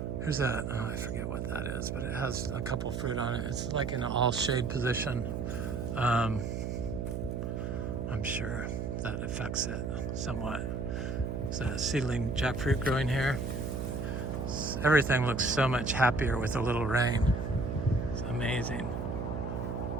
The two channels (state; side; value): noise; right; hum, 3 dB below the sound